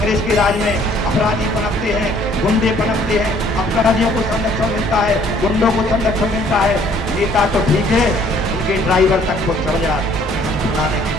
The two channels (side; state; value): both; normal; correlation 0.60